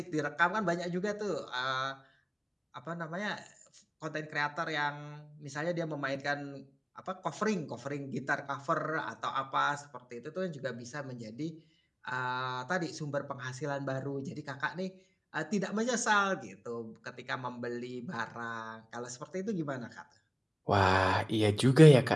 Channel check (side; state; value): both; identical; correlation 1.00